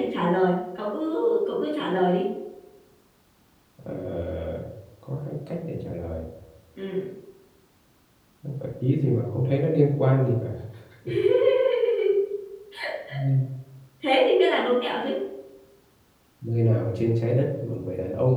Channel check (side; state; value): both; identical; correlation 1.00